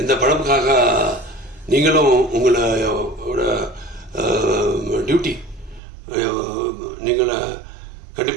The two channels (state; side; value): drops out; left; at 5.8 s